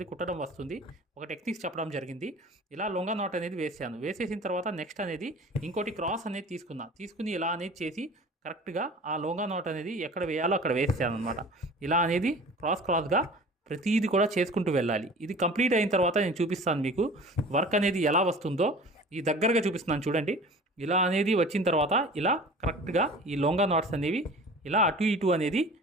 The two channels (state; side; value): normal; both; correlation 0.42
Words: కుట్టడం వస్తుంది. ఒక టెక్నిక్స్ చెప్పడం జరిగింది. ఇలా లొంగా నాట్ అనేది వేసాను. వేసేసిన తర్వాత నెక్స్ట్ అనేది ఇంకోటి క్రాస్ అనేది తీసుకుని ఇలా అనేది చేసి కరెక్ట్గా ఆ లొంగా నాట్ అనేది ఎక్కడ వేయాలో అక్కడ వేసాను అనమాట. ఇలా అనేది క్రాస్గా ప్రతిదీ కూడా చేసుకుంటూ వెళ్ళాలి. ఇది కంప్లీట్ అయిన తర్వాత నేను చూపిస్తాను మీకు వర్క్ అనేది ఎలా వస్తుందో. ఈ దగ్గరగా చూపిస్తున్నాను చూడండి. ఇలా అనేది వచ్చిన తర్వాత ఇలా కరెక్ట్గా ఈ లొంగా నాట్స్ అనేవి ఇలా అటు ఇటు అనేది